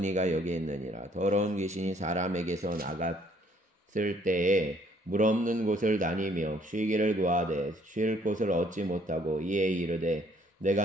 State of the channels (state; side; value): normal; both; correlation 0.63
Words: 이가 여기 있느니라. 더러운 귀신이 사람에게서 나갔을 때에 물 없는 곳을 다니며 쉬기를 구하되 쉴 곳을 얻지 못하고 이에 이르되